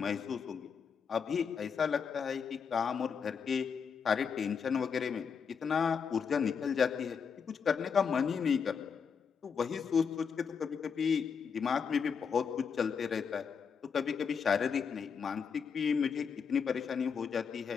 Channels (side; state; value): right; quieter; 6.4 dB